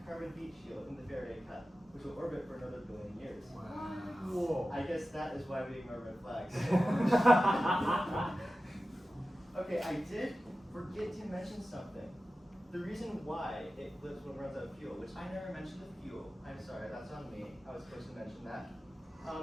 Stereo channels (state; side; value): normal; both; correlation 0.94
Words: carbon heat shield in the Faraday cup, which will orbit for another billion years. Whoa. I guess that is why we ignore red flags. Okay, I did forget to mention something. The reason why it flips when it runs out of fuel, which I never mentioned the fuel. I'm sorry, that's on me. I was supposed to mention that.